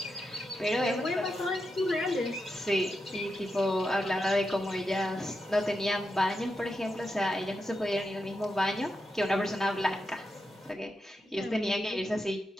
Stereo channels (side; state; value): both; normal; correlation 0.87